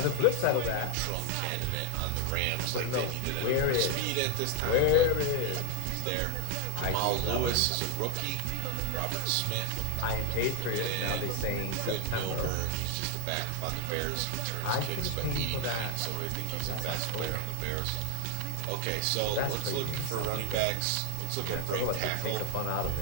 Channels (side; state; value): both; different; correlation 0.01